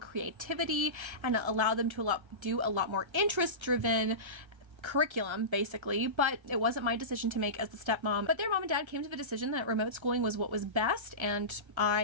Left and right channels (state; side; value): late; left; 1.3 ms